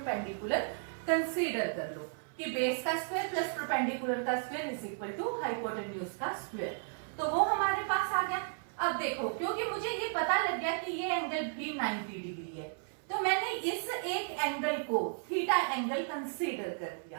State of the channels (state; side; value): silent; left; 55 dB below the other